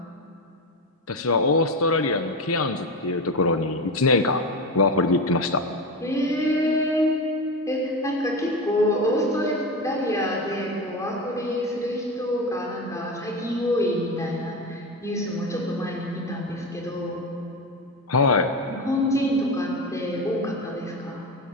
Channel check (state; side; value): normal; both; correlation 0.20